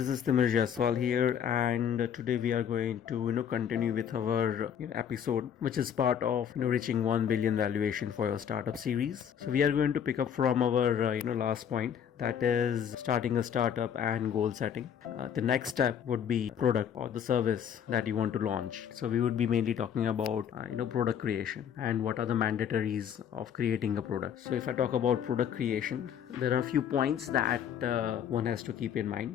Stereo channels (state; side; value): quieter; right; 8.6 dB